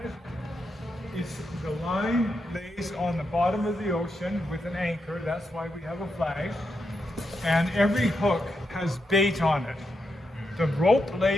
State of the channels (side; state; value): both; normal; correlation 0.84